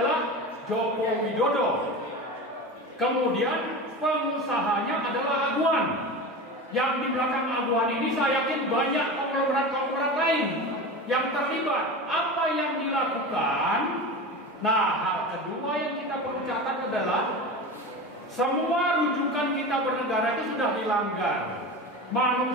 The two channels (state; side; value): normal; both; correlation 0.28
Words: Joko Widodo. Kemudian pengusahanya adalah Aguan. Yang di belakang Aguan ini saya yakin banyak konglomerat-konglomerat lain yang terlibat. Apa yang dilakukan? Nah, hal kedua yang kita perlu catat adalah semua rujukan kita bernegara itu sudah dilanggar.